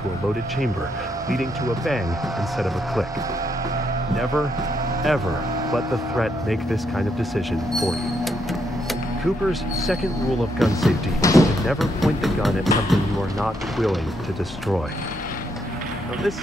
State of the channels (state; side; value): normal; both; correlation 0.76